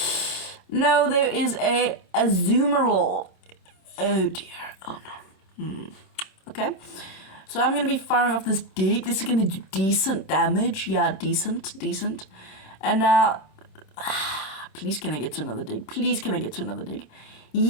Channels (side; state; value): right; late; 26 ms